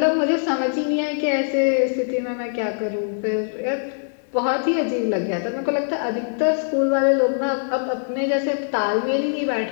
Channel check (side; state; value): right; silent; digital silence